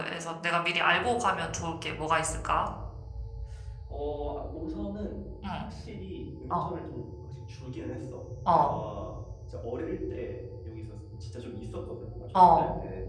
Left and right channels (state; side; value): identical; both; correlation 1.00